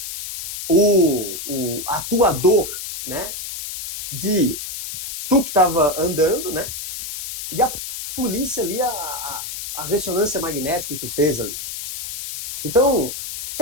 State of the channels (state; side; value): noise; left; hiss, 8 dB below the sound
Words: a tua dor, né? De tu que estava andando, né? E a polícia ali, a ressonância magnética que tu fez ali. Então,